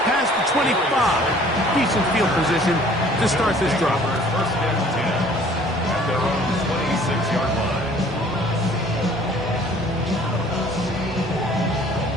past the 25. Decent field position to start this drive. First and 10 at their own 26-yard line.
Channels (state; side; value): normal; both; correlation 0.54